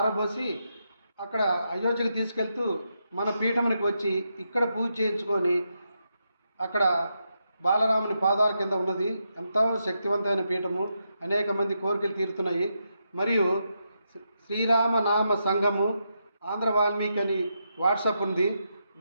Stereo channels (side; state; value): both; inverted; correlation -0.83